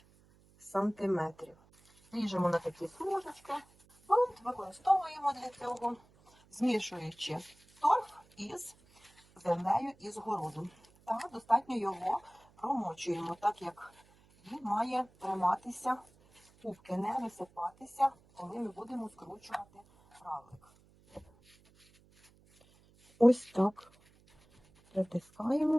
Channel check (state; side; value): noise; right; hum, 29 dB below the sound